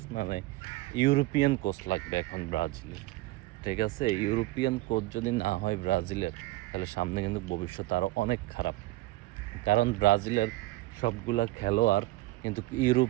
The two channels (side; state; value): left; quieter; 19.0 dB